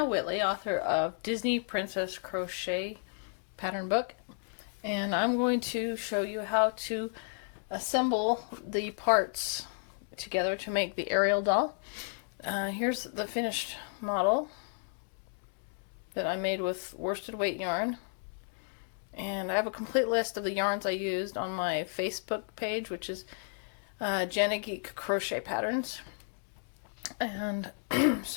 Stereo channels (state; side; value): silent; right; digital silence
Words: Whitley, author of Disney Princess Crochet pattern book, and I'm going to show you how to assemble the parts together to make the Ariel doll. Here's the finished model that I made with worsted weight yarn, and I have a complete list of the yarns I used on my Facebook page, which is Jana Geek Crochet Patterns. And